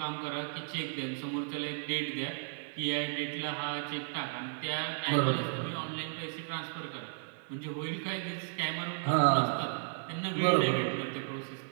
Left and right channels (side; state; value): left; silent; digital silence